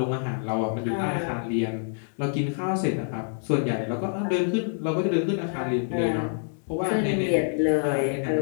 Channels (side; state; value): right; silent; digital silence